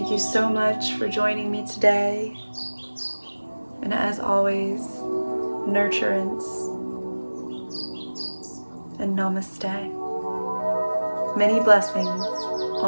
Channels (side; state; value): both; inverted; correlation -1.00